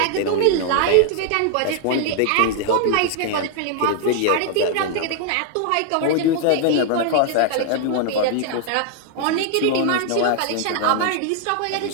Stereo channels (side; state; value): both; different; correlation 0.00